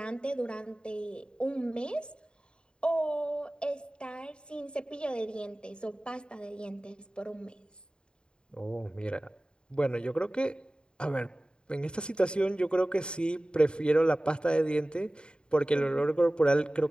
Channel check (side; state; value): right; late; 0.050 ms